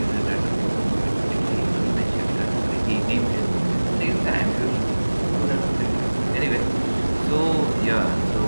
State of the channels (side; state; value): both; inverted; correlation -1.00